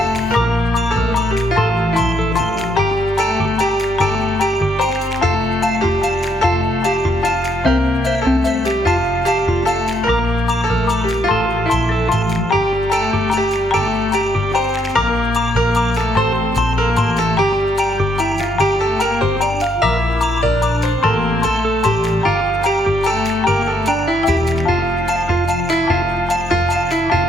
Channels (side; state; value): both; normal; correlation 0.73